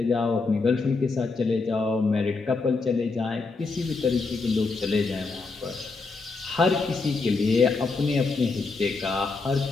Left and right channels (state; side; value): quieter; right; 4.0 dB